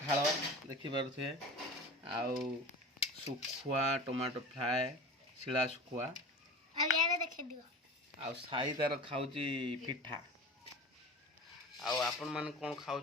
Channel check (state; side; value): normal; both; correlation 0.34